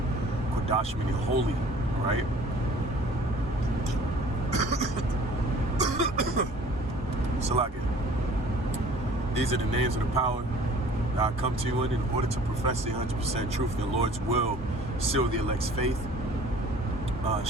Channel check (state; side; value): normal; both; correlation 0.50